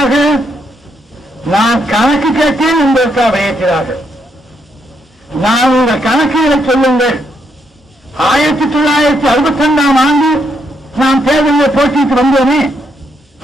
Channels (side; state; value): both; normal; correlation 0.76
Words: நான் கணக்கு கேட்டேன் என்பதற்காக வெளியேற்றினார்கள். நான் உங்கள் கணக்குகளை சொல்லுங்கள். 1962 ஆண்டு நாம் தேர்தலில் போட்டியிட்டு வந்தோமே,